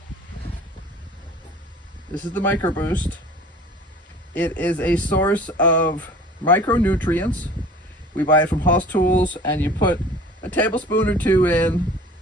This is the Micro Boost. It is a source of micronutrients. We buy it from House Tools, and you put a tablespoon or two in.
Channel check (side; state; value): both; normal; correlation 0.45